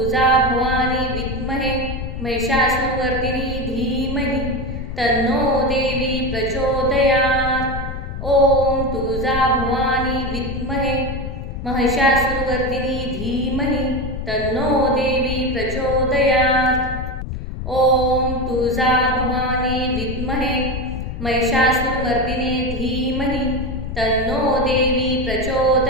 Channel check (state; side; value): noise; left; rumble, 6 dB below the sound